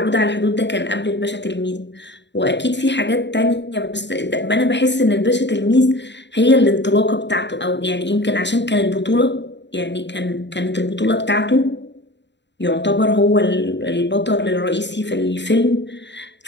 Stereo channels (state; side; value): late; right; 0.52 ms